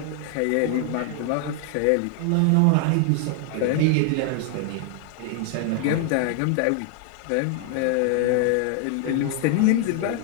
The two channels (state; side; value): different; both; correlation 0.00